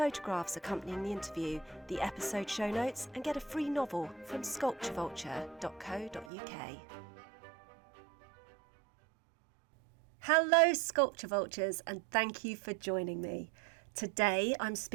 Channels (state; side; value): drops out; left; at 6.3 s